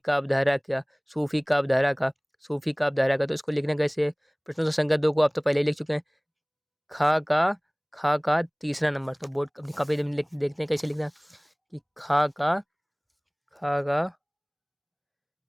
धारा। क्या सूफी काव्य धारा का, सूफी काव्य धारा का। तो इसको लिखना कैसे है, प्रश्नोत्तर संख्या 2 को आप तो पहले ही लिख चुके हैं। खा का तीसरा नंबर। तो बोर्ड अपनी कॉपी में देखते हैं कैसे लिखना है कि खा का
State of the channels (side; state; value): both; identical; correlation 1.00